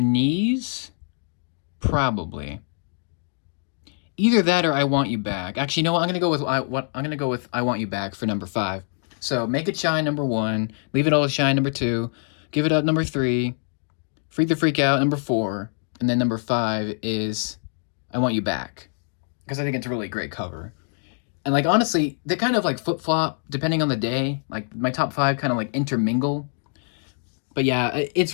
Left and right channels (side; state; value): right; silent; 62 dB below the other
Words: Knees. Probably. Either that or I Want You Back. Actually, you know what? I'm gonna go with I Want You Back for number 5. So Make It Shine number 1, Leave It All to Shine number 2, Give It Up, number 3. Freak the Freak Out, number 4. And then number 5 is I Want You Back. Because I think it's a really great cover. And like honestly, they kind of like flip-flop depending on the day. Like my top 5 kind of like intermingle. But yeah, it's